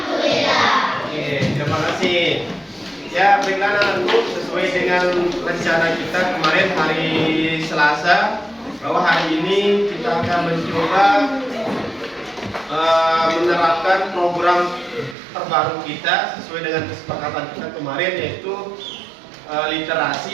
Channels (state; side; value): drops out; left; at 15.2 s